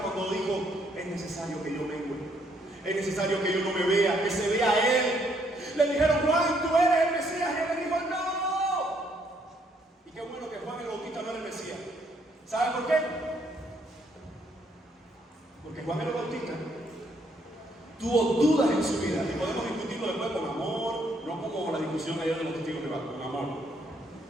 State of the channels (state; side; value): normal; both; correlation 0.70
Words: dijo: es necesario que yo mengue, es necesario que yo no me vea, que se vea a Él. Le dijeron: Juan, tú eres el Mesías, y Él le dijo: no. Y qué bueno que Juan el Bautista no era el Mesías. ¿Saben por qué? Porque Juan el Bautista tuvo dudas en su vida, y podemos discutirlo después con amor, no como la discusión ayer de los testigos de Jehová, con amor.